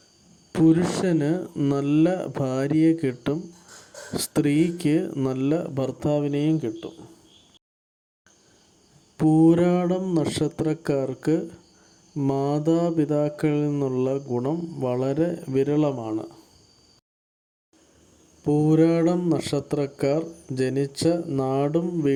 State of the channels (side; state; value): both; identical; correlation 1.00